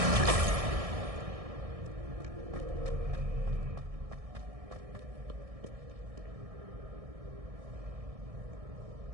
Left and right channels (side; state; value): left; late; 1.6 ms